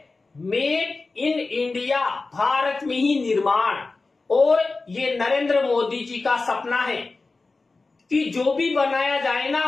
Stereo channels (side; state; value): right; quieter; 3.7 dB